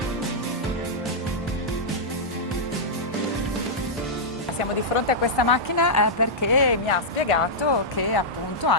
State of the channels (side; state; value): both; normal; correlation -0.09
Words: Siamo di fronte a questa macchina perché mi ha spiegato che appunto ha